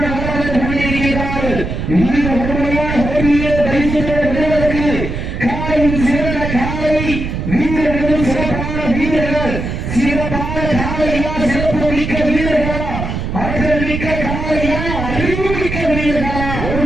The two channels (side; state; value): right; noise; rumble, 4 dB below the sound